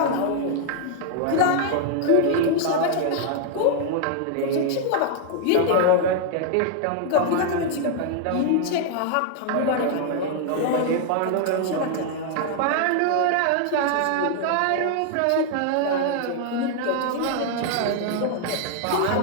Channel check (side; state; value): both; different; correlation 0.00